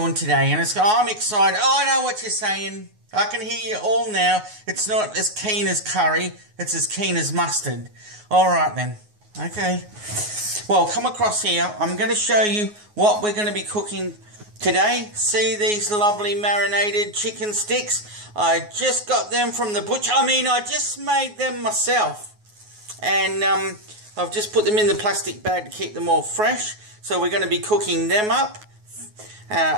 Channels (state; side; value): late; left; 9.5 ms